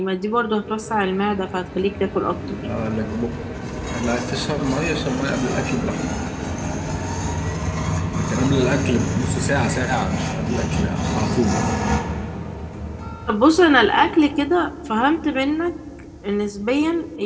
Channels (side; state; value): both; identical; correlation 1.00